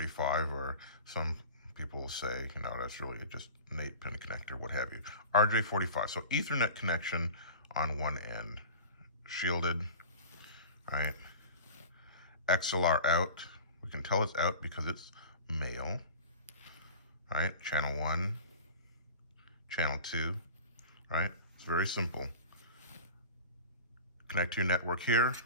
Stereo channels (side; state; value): both; inverted; correlation -0.37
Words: or some people will say, that's really just an 8-pin connector, what have you. RJ45, so Ethernet connection on one end, shielded, right? XLR out, we can tell it's out because it's male, right? Channel 1, channel 2, right? It's very simple. Connect to your network here.